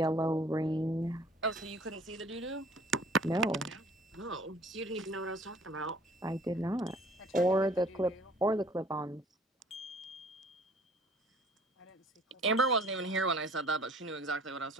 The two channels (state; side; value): normal; both; correlation 0.53